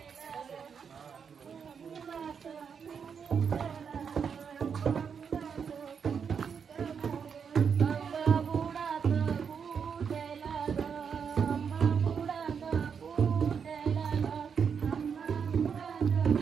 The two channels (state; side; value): quieter; left; 6.7 dB